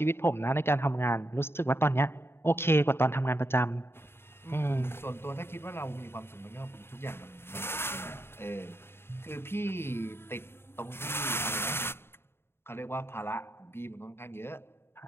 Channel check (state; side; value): late; right; 0.11 ms